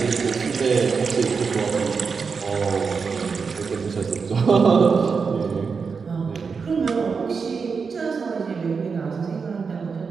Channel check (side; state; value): left; quieter; 5.3 dB